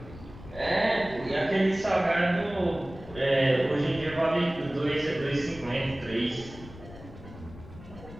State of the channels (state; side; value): noise; left; rumble, 16 dB below the sound